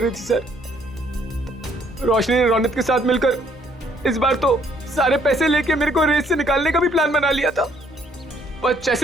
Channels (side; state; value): both; normal; correlation 0.65